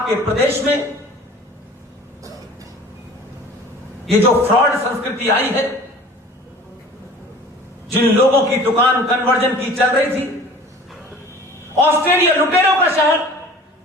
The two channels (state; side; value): normal; both; correlation 0.44